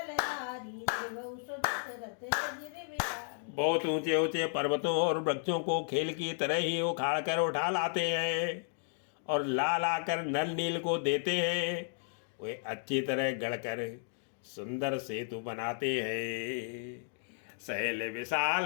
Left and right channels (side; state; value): right; silent; digital silence